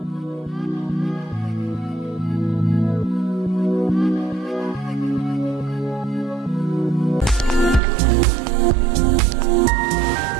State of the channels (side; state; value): left; drops out; at 7.8 s